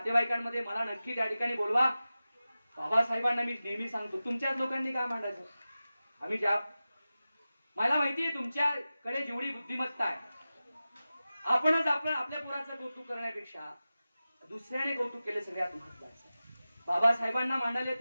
मला नक्की त्या ठिकाणी बोलवा. बाबासाहेबांना मी नेहमी सांगतो, तुमच्याच लोकांनी काय मांडायचं. आम्ही ज्या, मला माहितीये तुमच्याकडे जेवढी बुद्धिमत्ता आहे, आपणच आपल्या पोराचं कौतुक करण्यापेक्षा दुसऱ्याने कौतुक केले सगळ्यात महत्वाचं. बाबासाहेबांना मांडायला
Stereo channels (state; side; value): inverted; both; correlation -0.95